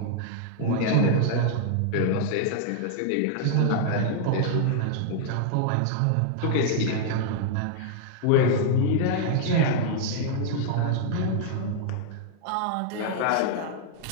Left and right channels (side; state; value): both; different; correlation -0.01